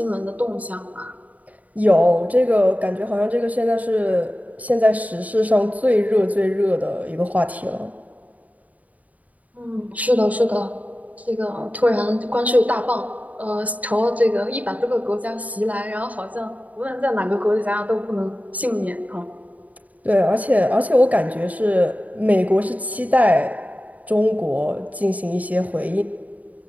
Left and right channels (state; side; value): late; left; 0.073 ms